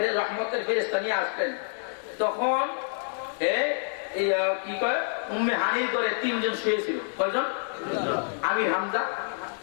রহমতের ফেরেশতা নিয়ে আসলেন, তখন কি কয় উম্মে হানির করে 3 জন শুয়েছিল। কয়জন? আমির হামজা,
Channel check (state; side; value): silent; right; digital silence